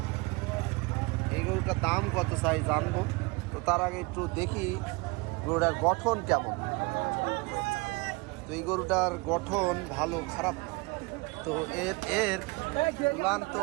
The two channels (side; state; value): left; quieter; 26.2 dB